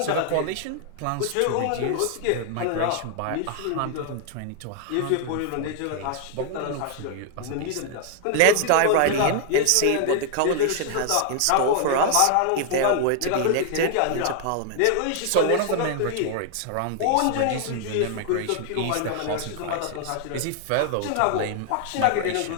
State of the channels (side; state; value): both; different; correlation 0.00